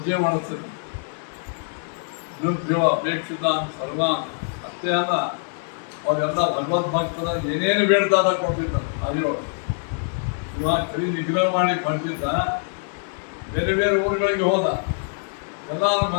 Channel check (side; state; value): right; silent; 63 dB below the other